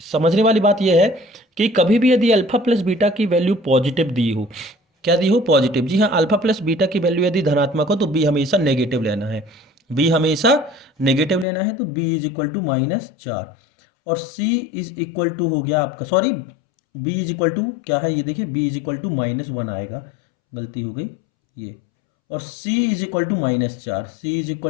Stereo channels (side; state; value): right; drops out; at 11.5 s